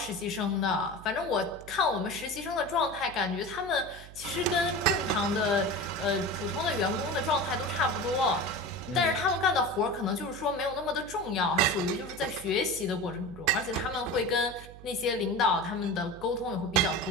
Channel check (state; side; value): noise; right; hum, 17 dB below the sound